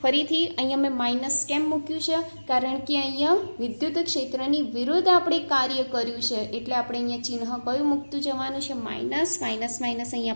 ફરીથી અહીંયા મેં માઇનસ કેમ મૂક્યું છે? કારણ કે અહીંયા વિદ્યુત ક્ષેત્રની વિરુદ્ધ આપણે કાર્ય કર્યું છે. એટલે આપણે અહીંયા ચિહ્ન કયું મૂકતું જવાનું છે? માઇનસ. માઇનસ માઇનસ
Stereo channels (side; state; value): both; inverted; correlation -1.00